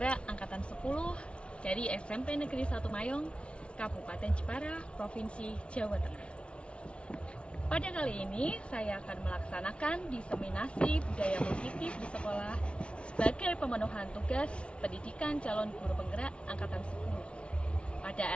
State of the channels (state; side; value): late; right; 0.059 ms